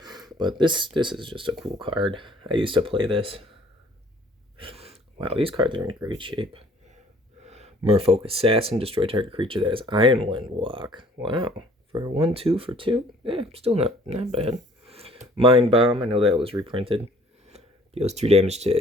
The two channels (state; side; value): normal; both; correlation 0.56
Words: But this is just a cool card. I used to play this. Wow, these cards are in great shape. Merfolk Assassin, destroy target creature that has Ironwind Walk. Wow, for 1/2 for 2? Yeah, still not bad. Mind Bomb, I know that was reprinted. Deals 2 damage